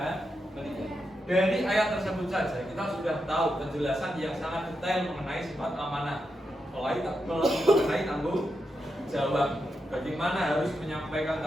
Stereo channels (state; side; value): normal; both; correlation 0.86